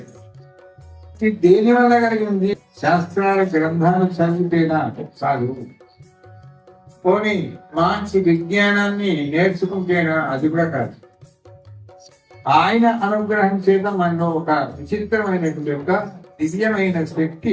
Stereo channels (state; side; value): identical; both; correlation 1.00